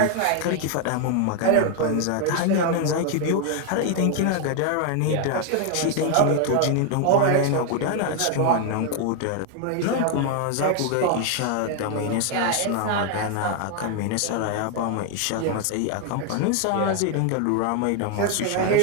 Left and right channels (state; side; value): different; both; correlation 0.00